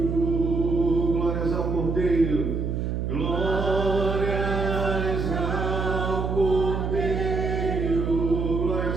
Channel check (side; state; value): right; noise; hum, 1 dB below the sound